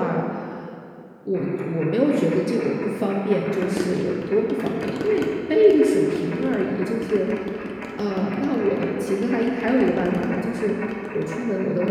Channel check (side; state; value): both; identical; correlation 1.00